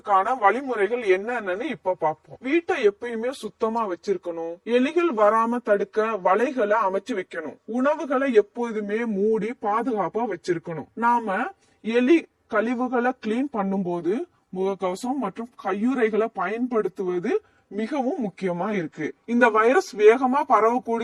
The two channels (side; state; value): both; identical; correlation 1.00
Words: வழிமுறைகள் என்னன்னு இப்ப பாப்போம். வீட்டை எப்பயுமே சுத்தமா வச்சிருக்கணும். எலிகள் வராம தடுக்க வலைகளை அமைச்சு வைக்கணும். உணவுகளை எப்போதுமே மூடி பாதுகாப்பா வச்சிருக்கணும். நாம எலி கழிவுகளை கிளீன் பண்ணும்போது முகக்கவசம் மற்றும் கையுறைகளை பயன்படுத்துவது மிகவும் முக்கியமா இருக்கு. இந்த வைரஸ் வேகமா